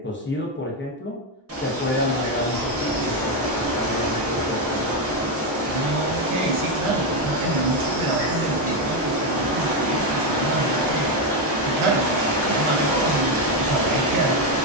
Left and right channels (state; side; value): normal; both; correlation 0.07